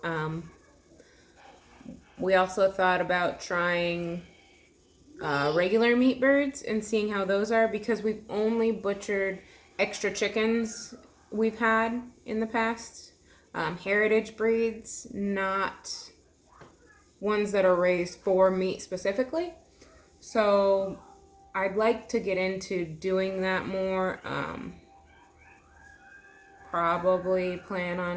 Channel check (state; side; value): identical; both; correlation 1.00